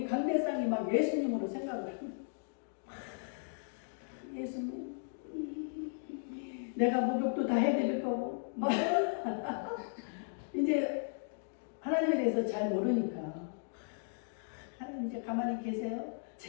감대상이 막 예수님으로 생각을 합니다. 예수님, 내가 목욕도 다 해드릴 거고 막 이제 하나님에 대해서 잘 모르니까 하나님 이제 가만히 계세요.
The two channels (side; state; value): right; silent; digital silence